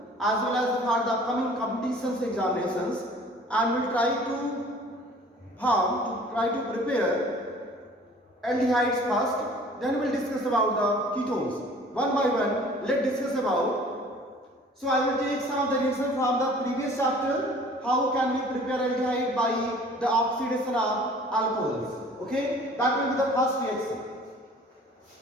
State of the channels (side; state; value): both; normal; correlation 0.49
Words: as well as for the upcoming competitions examinations, and we'll try to prepare aldehydes first, then we'll discuss about the ketones one by one. Let's discuss about, so I will take some of the reactions from the previous chapter, how can we prepare aldehyde by the oxidation of alcohols. Okay, that will be the first reaction.